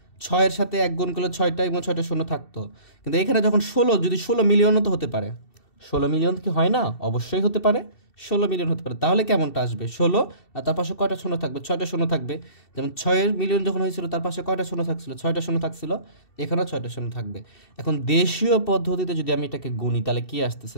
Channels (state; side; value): late; right; 2.7 ms